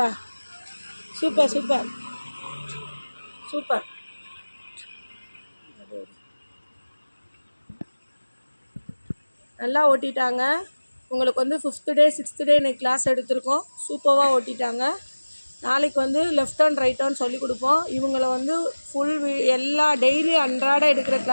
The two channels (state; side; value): inverted; both; correlation -1.00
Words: சூப்பர். நல்லா ஓட்டிட்டாங்க. உங்களுக்கு வந்து 5th டே 6th டே இன்னைக்கு கிளாஸ் எடுத்திருக்கோம். சூப்பராக ஓட்டிட்டாங்க. நாளைக்கு வந்து லெஃப்ட் டர்ன், ரைட் டர்ன் சொல்லி கொடுப்போம். இவங்களை வந்து எல்லா டெய்லி அன்றாட எடுக்கிற